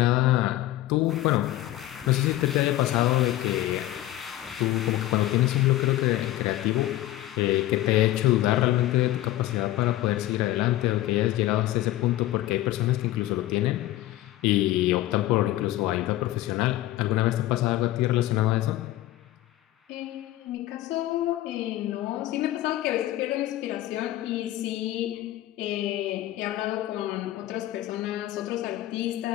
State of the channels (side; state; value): right; quieter; 15.3 dB